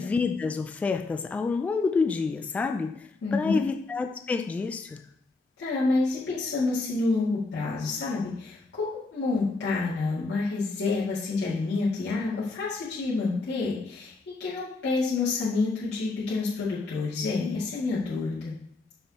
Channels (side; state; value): right; quieter; 3.5 dB